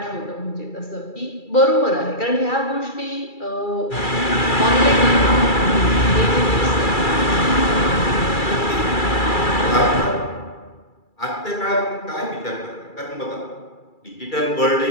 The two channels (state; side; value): late; right; 2.3 ms